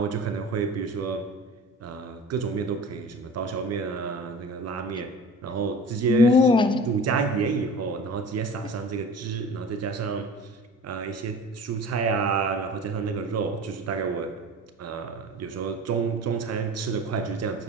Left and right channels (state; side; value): normal; both; correlation 0.39